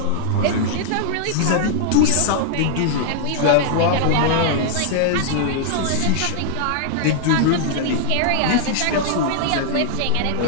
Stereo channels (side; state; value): both; different; correlation -0.01